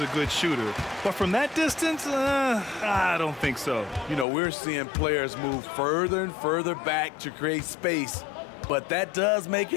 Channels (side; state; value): right; drops out; at 4.2 s